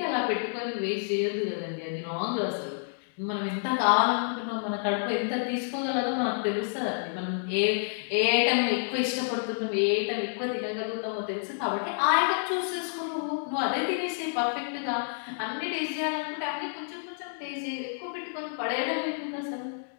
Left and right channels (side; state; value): right; silent; digital silence